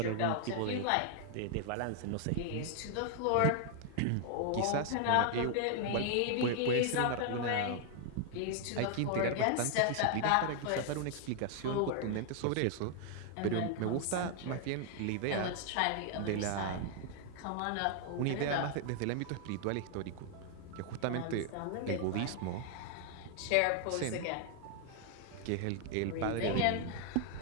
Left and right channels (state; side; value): different; both; correlation 0.00